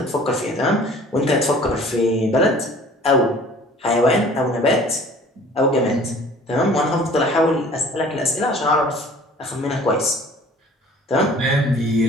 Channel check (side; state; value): both; normal; correlation 0.49